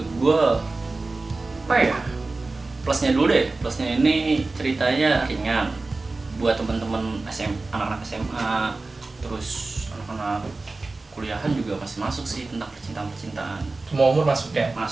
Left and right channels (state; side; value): quieter; left; 3.4 dB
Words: apa ya? Plusnya dulu deh. Plusnya ini ceritanya ringan buat teman-teman anak-anak SMA, terus anak-anak kuliahan juga masih masuk sih tentang percintaan. Semua umur masuk ya?